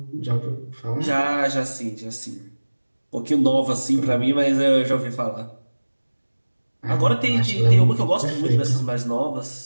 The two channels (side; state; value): both; inverted; correlation -1.00